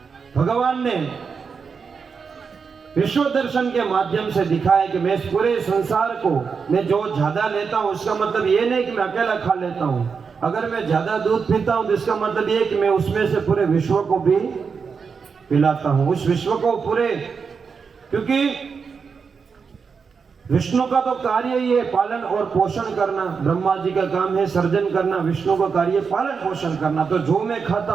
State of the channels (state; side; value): quieter; left; 5.6 dB